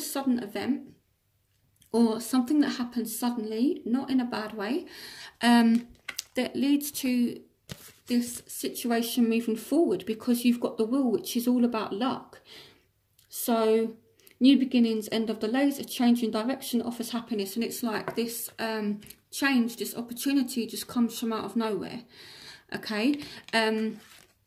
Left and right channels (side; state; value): both; identical; correlation 1.00